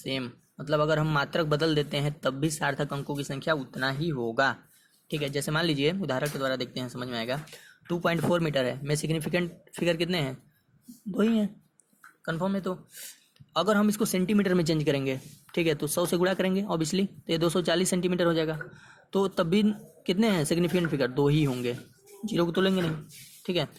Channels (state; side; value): identical; both; correlation 1.00